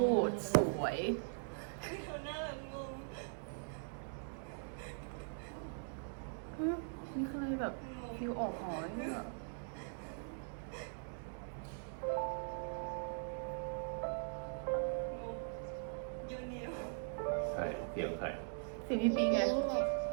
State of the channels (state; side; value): silent; left; digital silence